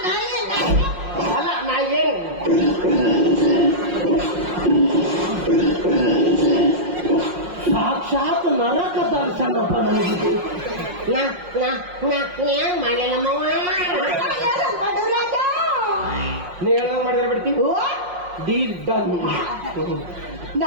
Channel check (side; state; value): left; late; 5.5 ms